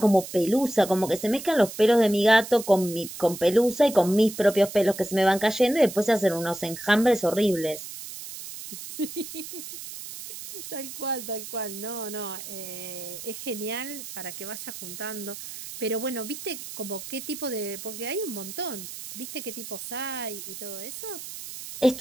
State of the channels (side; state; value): right; noise; hiss, 11 dB below the sound